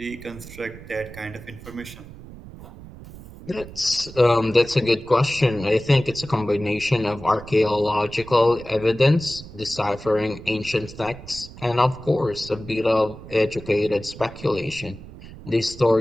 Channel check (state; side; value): noise; right; rumble, 16 dB below the sound